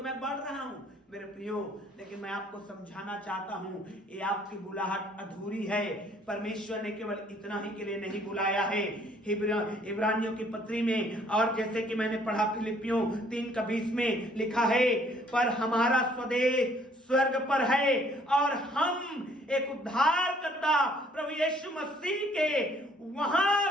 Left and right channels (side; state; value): both; normal; correlation 0.61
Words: मैं बढ़ रहा हूं। मेरे प्रियो, लेकिन मैं आपको समझाना चाहता हूं, ये आपकी बुलाहट अधूरी है। परमेश्वर ने केवल इतना ही के लिए नहीं बुलाया है। इब्रानियों की पत्री में, और जैसे कि मैंने पढ़ा फिलिपियों 3 का 20 में लिखा है, पर हमारा स्वदेश स्वर्ग पर है और हम एक उद्धारकर्ता प्रभु यीशु मसीह के